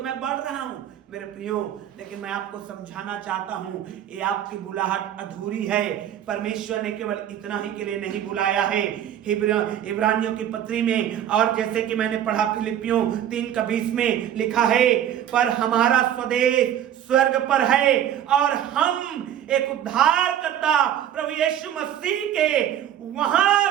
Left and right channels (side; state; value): left; quieter; 10.6 dB